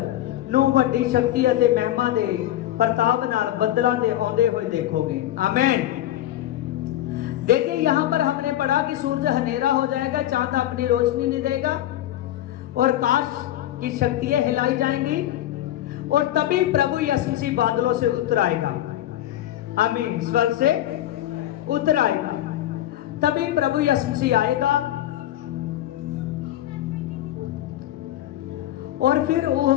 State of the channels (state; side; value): quieter; right; 13.3 dB